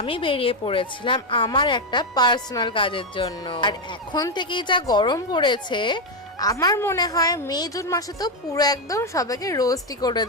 বেরিয়ে পড়েছিলাম আমার একটা পার্সোনাল কাজের জন্য। আর এখন থেকেই যা গরম পড়েছে, আমার মনে হয় মে জুন মাসে তো পুরো একদম সবাইকে রোস্টই করে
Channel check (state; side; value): normal; both; correlation 0.06